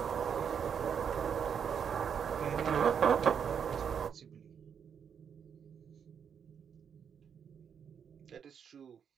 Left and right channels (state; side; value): quieter; left; 7.4 dB